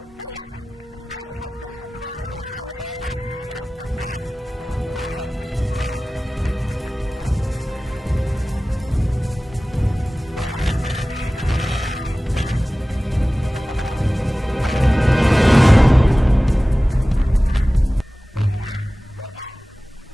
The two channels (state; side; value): normal; both; correlation 0.97